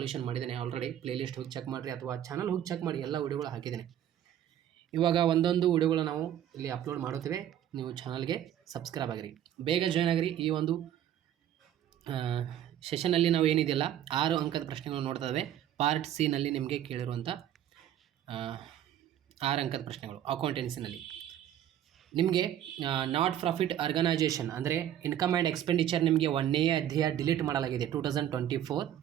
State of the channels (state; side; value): quieter; left; 11.1 dB